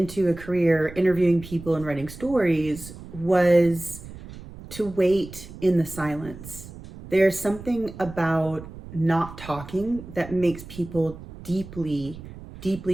a career interviewing people and writing stories was to wait in the silence. There's something about not talking that makes people deeply,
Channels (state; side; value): noise; right; rumble, 15 dB below the sound